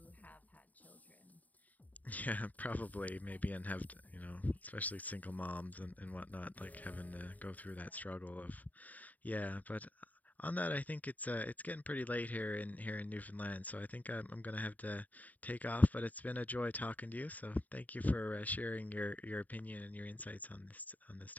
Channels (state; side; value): late; right; 0.076 ms